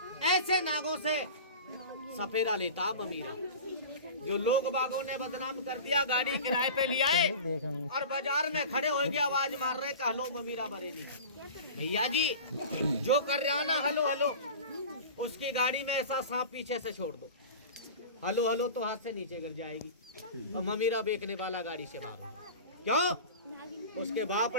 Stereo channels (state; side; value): inverted; both; correlation -0.35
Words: ऐसे नागों से सफेदा लेता ममीरा, जो लोग बागों ने बदनाम कर दिया। गाड़ी किराए पे लिया है और बाजार में खड़े हो गए, आवाज मार रहे कि हलो ममीरा बरेली। भैया जी जो कर रहा ना हलो हलो, उसकी गाड़ी में ऐसा सांप पीछे से छोड़ दो, हलो हलो तो हाथ से नीचे गिर जाएगी और ममीरा बेचने वाला गाड़ी से मारो। क्यों? उसके बाप